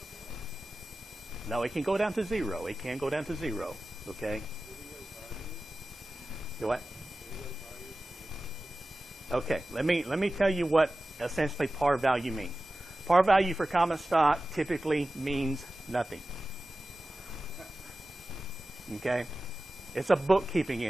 No, it can go down to zero. It can go down to zero, okay? You what? Okay, let me tell you what essentially par value means. Par value for common stock typically means nothing. Okay? It's a bookkeeping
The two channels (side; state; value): both; normal; correlation 0.95